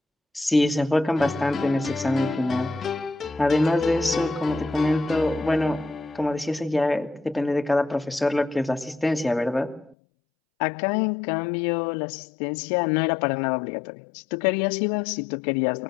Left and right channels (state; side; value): drops out; right; at 10.0 s